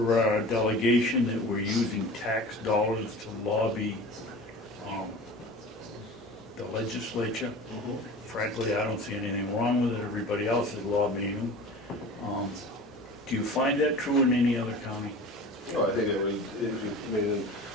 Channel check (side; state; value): both; normal; correlation 0.37